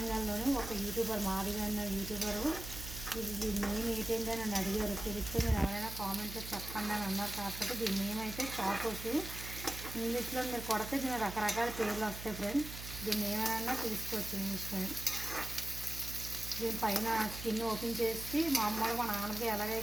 ఒక యూట్యూబర్, మాదిగా అన్న యూట్యూబరు. ఇది దీని నేమ్ ఏంటంటే నన్ను అడిగారు. తెలిస్తే మీరు ఎవరైనా కామెంట్లో చెప్పండి అని అన్నారు. కాకపోతే దీని నేమ్ అయితే చాకోస్. ఇంగ్లీష్లో మీరు కొడితే దీని రకరకాల పేర్లు వస్తాయి ఫ్రెండ్స్. దీన్ని ఏమైనా తీసుకోవచ్చు ఇంగ్లీష్లో. దీనిపైన స్కిన్ ఓపెన్ చేసి మామూలుగా మన ఆనపకాయ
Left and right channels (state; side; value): noise; right; hum, 10 dB below the sound